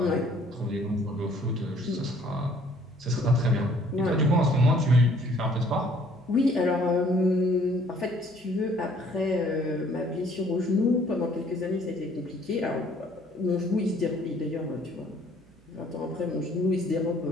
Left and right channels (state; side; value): noise; right; hum, 28 dB below the sound